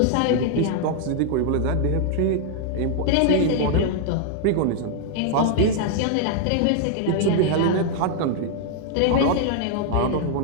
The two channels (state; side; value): different; both; correlation 0.00